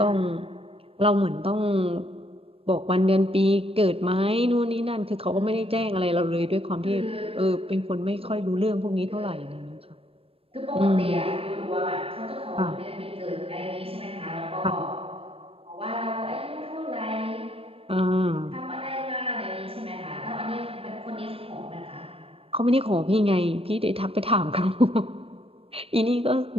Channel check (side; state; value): left; late; 0.28 ms